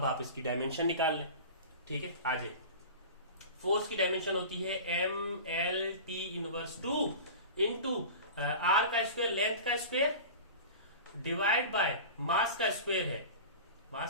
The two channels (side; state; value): both; inverted; correlation -0.34